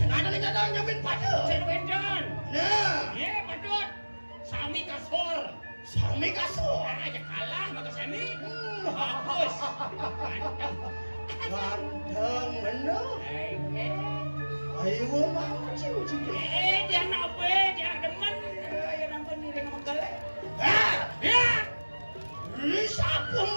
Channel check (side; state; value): both; inverted; correlation -1.00